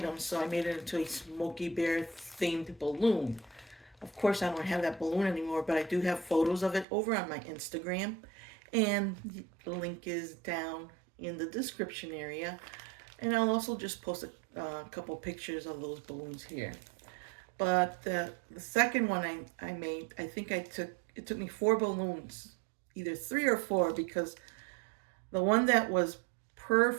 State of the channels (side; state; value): left; drops out; at 6.9 s